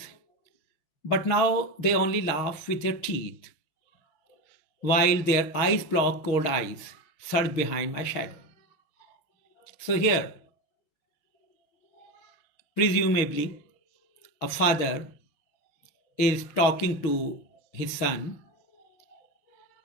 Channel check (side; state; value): right; late; 6.0 ms